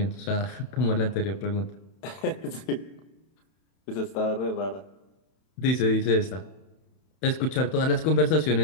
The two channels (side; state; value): right; late; 31 ms